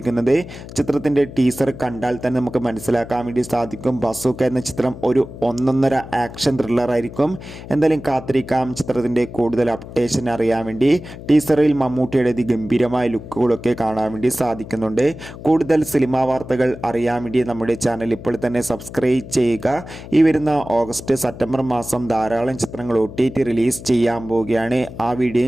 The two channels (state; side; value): noise; left; hum, 14 dB below the sound